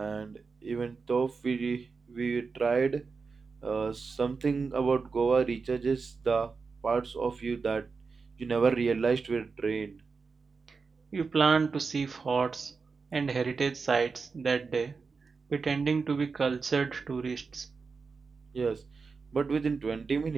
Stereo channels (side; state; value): left; quieter; 4.8 dB